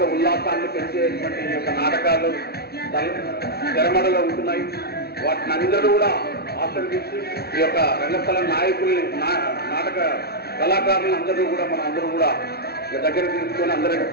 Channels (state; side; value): late; right; 0.46 ms